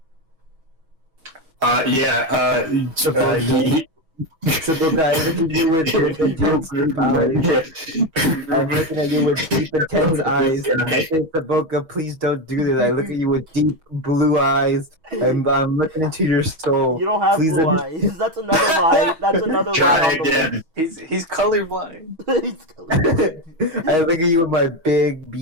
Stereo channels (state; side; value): late; left; 6.2 ms